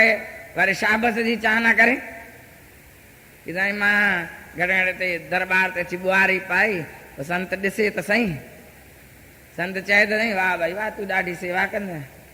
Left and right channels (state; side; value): identical; both; correlation 1.00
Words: वरी शाबस जी चाह न करे कि साईं मां घणे ते दरबार ते अची बुआरी पाई, संत ॾिसे त सही, संत चए त सही वाह भाई वाह तूं ॾाढी सेवा कंदे,